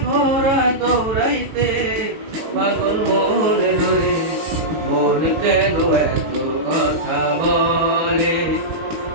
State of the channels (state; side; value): late; left; 18 ms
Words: ঘোড়া দৌড়াইতে। পাগল মন রে, মন কেন এত কথা বলে?